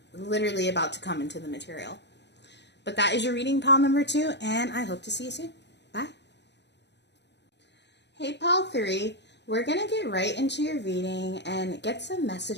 literally about to come into the material. But that is your reading, pile number 2, and I hope to see you soon. Bye. Hey, pile 3. We're going to get right into your reading and get some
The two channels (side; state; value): right; late; 0.50 ms